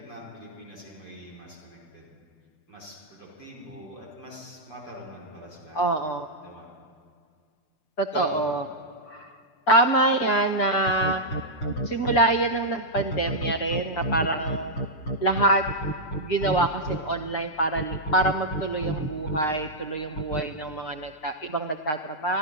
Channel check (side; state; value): right; late; 6.6 ms